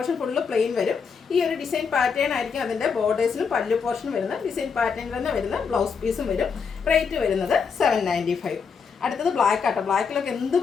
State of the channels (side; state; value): right; quieter; 5.9 dB